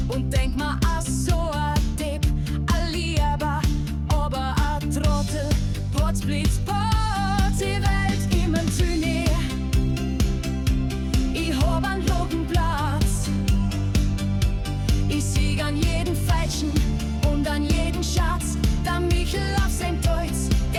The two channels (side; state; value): both; identical; correlation 1.00